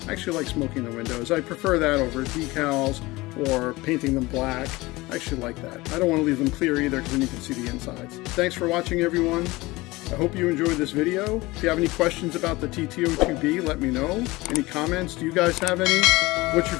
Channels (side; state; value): right; quieter; 21.0 dB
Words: I actually like smoking the windows. I prefer that over decals or painting them black. I actually like that. I don't want to leave them clear either, because then you can see the insides. Thanks for watching, everyone. I hope you enjoyed this video. If you have any questions about the TT-02B, let me know. Any comments? Do you guys have any? What's your